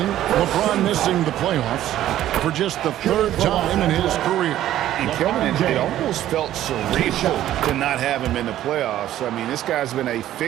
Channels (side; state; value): left; quieter; 12.8 dB